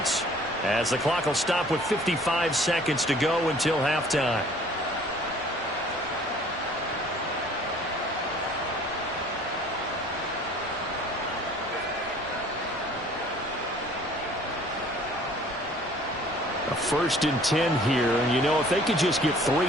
as the clock will stop with 55 seconds to go until halftime. A 1st and 10 here, and you know, if they could just get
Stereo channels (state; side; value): normal; both; correlation 0.53